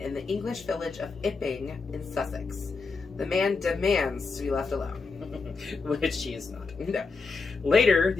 the English village of Ipping in Sussex. The man demands to be left alone. Which he is not. No. Later,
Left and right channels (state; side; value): quieter; right; 4.4 dB